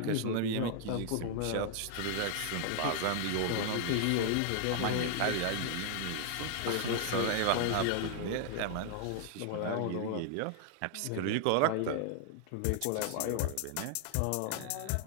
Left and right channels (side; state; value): both; different; correlation 0.00